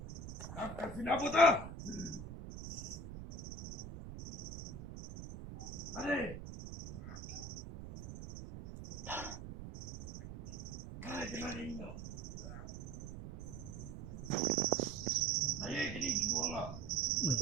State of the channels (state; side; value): noise; right; rumble, 9 dB below the sound